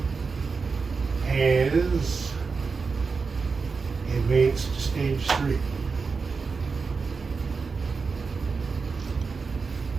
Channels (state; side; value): quieter; left; 4.8 dB